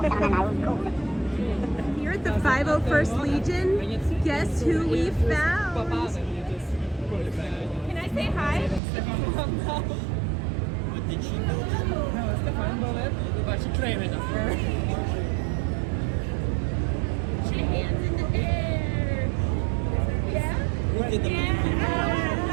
Here at the 501st Legion, guess who we found? Can I say hi? What did she do? No, Stefan Bullet, but she claimed it first. Put your hands in the air. Yeah? Who did the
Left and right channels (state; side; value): drops out; left; at 8.8 s